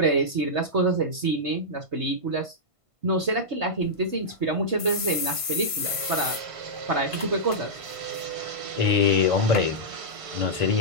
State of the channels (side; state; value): left; late; 1.5 ms